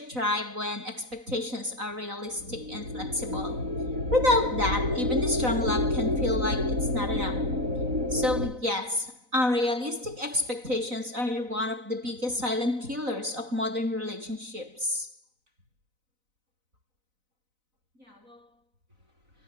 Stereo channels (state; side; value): late; left; 4.0 ms